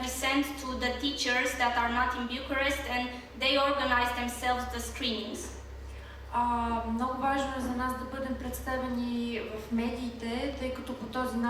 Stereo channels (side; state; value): both; identical; correlation 1.00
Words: we send to the teachers that are not in Bucharest, and they organize themselves the screenings. Много важно е за нас да бъдем представени в медиите, тъй като по този